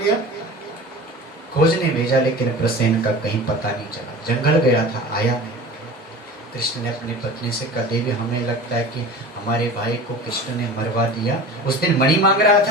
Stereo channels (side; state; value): both; normal; correlation 0.37